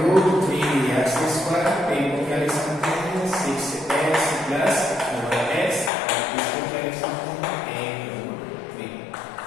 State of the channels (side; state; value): right; drops out; at 5.9 s